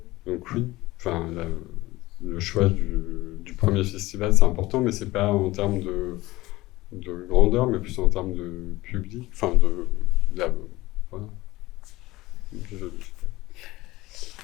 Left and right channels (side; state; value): right; quieter; 18.9 dB